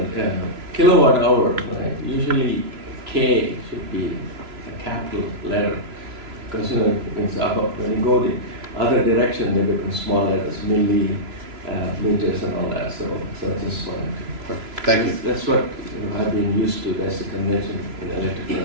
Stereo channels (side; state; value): left; late; 3.0 ms